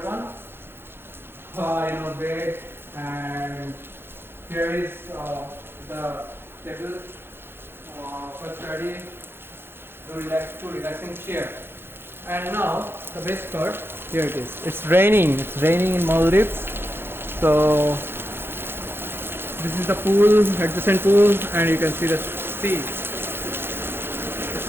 Bed, and here is the table. For study, relaxing chair. And now the best part, here it is. It's raining in Maldives. So this is the pool, adjacent pool, and you can see the sea.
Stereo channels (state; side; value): late; left; 0.11 ms